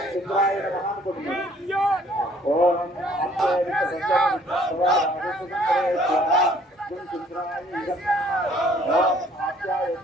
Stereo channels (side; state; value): both; normal; correlation 0.60